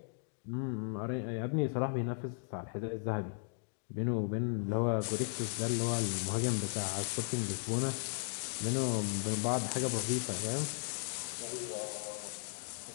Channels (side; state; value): right; silent; digital silence